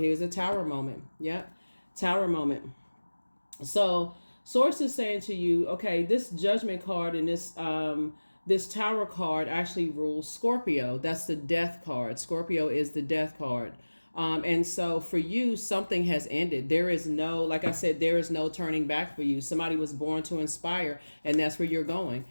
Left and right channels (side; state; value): both; inverted; correlation -1.00